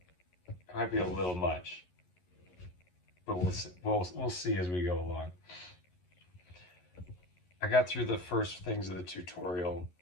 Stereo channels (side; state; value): right; late; 11 ms